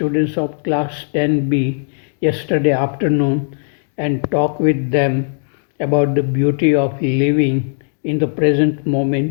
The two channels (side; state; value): right; silent; 67 dB below the other